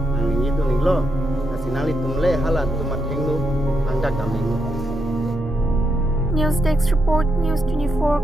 ang itu nilo hasinali tumle halat tumat hengnu angka kaming News Desk Report News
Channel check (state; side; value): normal; both; correlation 0.81